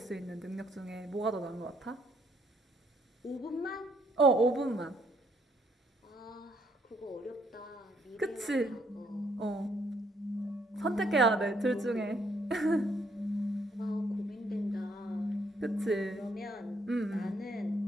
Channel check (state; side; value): normal; both; correlation 0.70